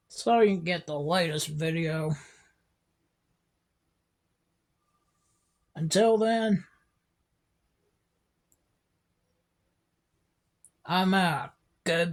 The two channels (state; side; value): identical; both; correlation 1.00